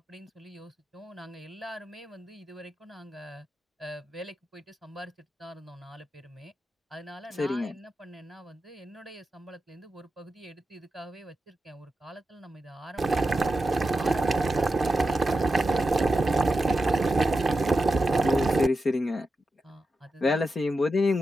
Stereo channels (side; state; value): both; normal; correlation 0.90